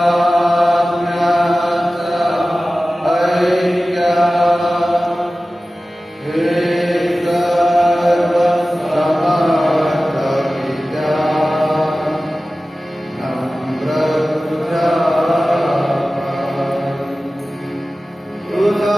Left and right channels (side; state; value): both; normal; correlation 0.96